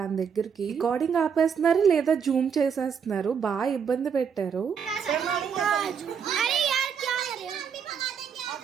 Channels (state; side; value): quieter; left; 7.0 dB